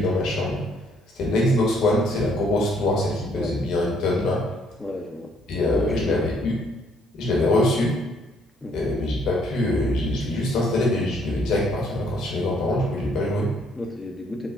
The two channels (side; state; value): both; normal; correlation 0.67